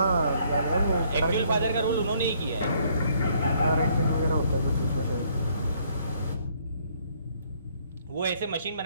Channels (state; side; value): inverted; both; correlation -0.66